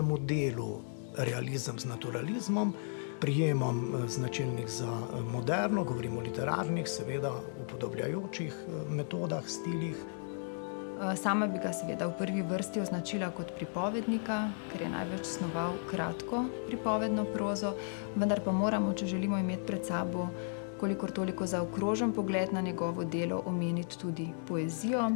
delu, realizem z naturalizmom, prijemom značilnih za moderno, govorimo o literarnih, seveda upodobljajočih metodah, stilih. Sama bi ga seveda v prvi vrsti označila kot pripovednika, ker je največ snoval kratko pripovedno prozo, vendar pa moramo, če želimo imeti pred sabo kolikor toliko zaokrožen pogled na njegovo delo, omeniti tudi poezijo.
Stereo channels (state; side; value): silent; right; digital silence